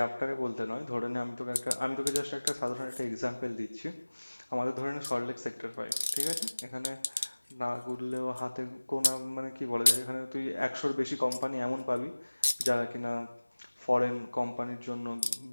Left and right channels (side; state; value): both; inverted; correlation -1.00